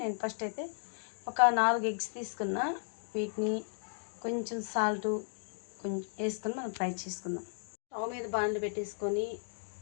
నేను ఫస్ట్ అయితే ఒక 4 ఎగ్స్ తీసుకున్నా. వీటిని కొంచెం సాల్ట్ కొంచెం వేసుకొని మనం ఫ్రై చేసుకుందాం. స్టవ్ మీద బాండ్లు పెట్టేసుకొని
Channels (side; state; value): right; silent; digital silence